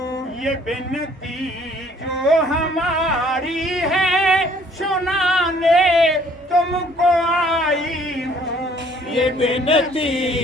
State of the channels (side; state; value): both; normal; correlation 0.59